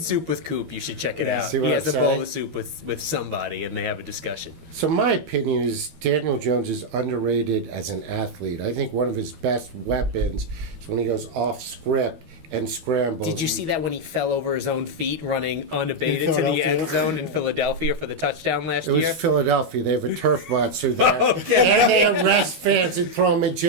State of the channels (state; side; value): late; left; 12 ms